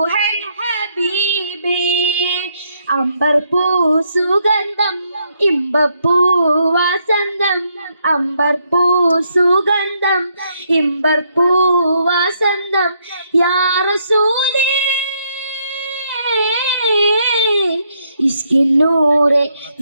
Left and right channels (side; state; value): both; inverted; correlation -0.74